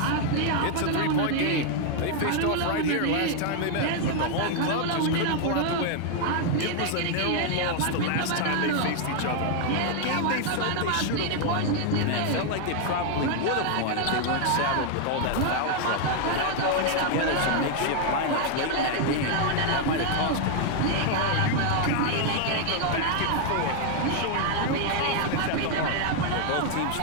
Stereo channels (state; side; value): different; both; correlation 0.00